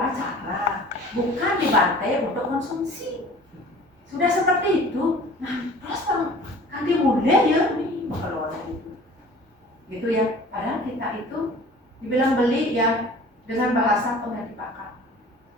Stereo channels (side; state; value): both; normal; correlation 0.45